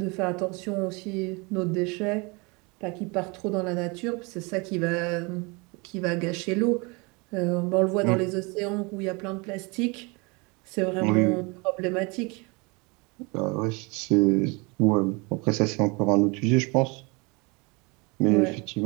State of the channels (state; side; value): quieter; left; 28.5 dB